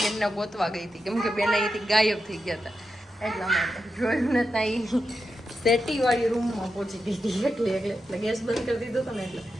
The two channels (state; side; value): normal; both; correlation 0.88